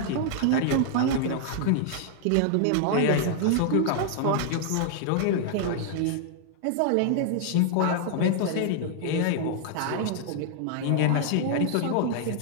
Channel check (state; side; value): different; both; correlation 0.00